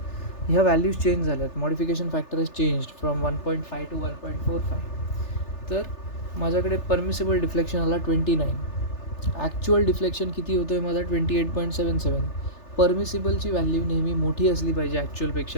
ह्या व्हॅल्यूज चेंज झाल्यात. Modification factor is changed from 1.5 to 1.45. तर माझ्याकडे परमिसिबल डिफ्लेक्शन आला 29. ॲक्च्युअल डिफ्लेक्शन किती होतो आहे माझा? 28.77. परमिसिबलची व्हॅल्यू नेहमी मोठी असली पाहिजे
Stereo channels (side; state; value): right; late; 3.3 ms